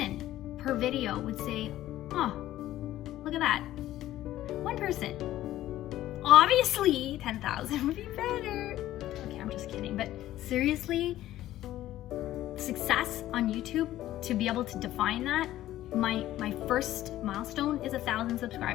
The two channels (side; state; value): right; quieter; 14.1 dB